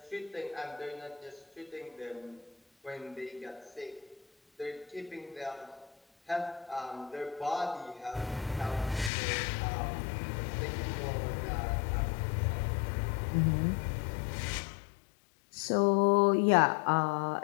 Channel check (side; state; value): right; drops out; at 9.1 s